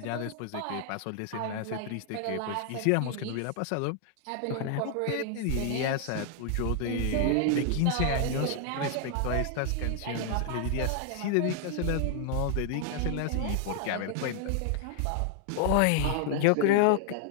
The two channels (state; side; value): different; both; correlation 0.00